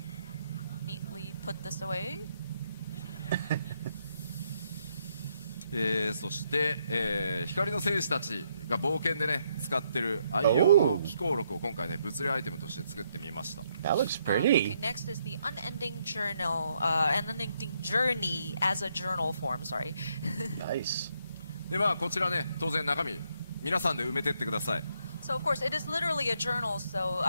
neatly put this away. そして、光の戦士たちが冒険でね使ってる愛用の機構録を今回ね物理アイテムとして作ってみました。 That looks Okay, pretty. next is the unending journey as a journal form. Sorry. Nice. でまあこちらね当然中身皆さんで埋めてってください。 So of course, it is literally a journal, so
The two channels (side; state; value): both; inverted; correlation -0.75